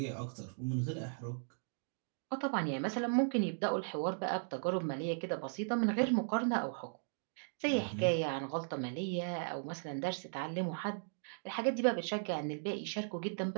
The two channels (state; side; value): silent; left; digital silence